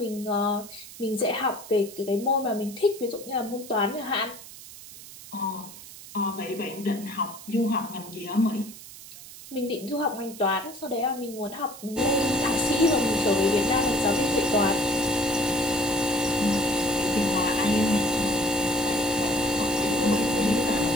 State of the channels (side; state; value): right; noise; hiss, 16 dB below the sound